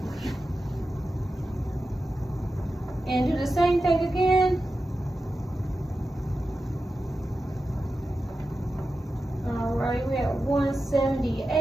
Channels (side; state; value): both; normal; correlation 0.92